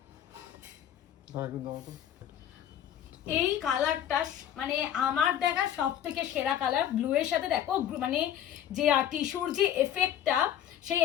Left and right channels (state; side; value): quieter; right; 10.4 dB